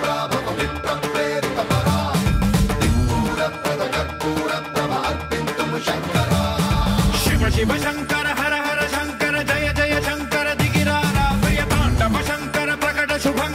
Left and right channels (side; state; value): both; identical; correlation 1.00